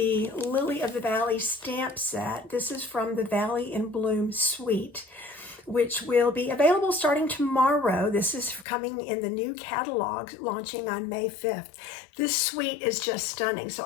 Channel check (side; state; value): right; drops out; at 8.7 s